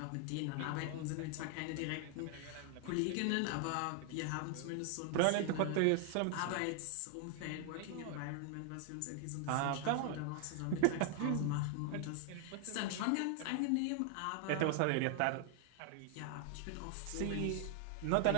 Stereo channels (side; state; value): both; different; correlation 0.00